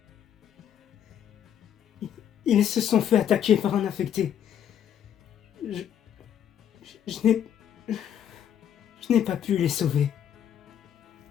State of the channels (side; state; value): right; quieter; 9.5 dB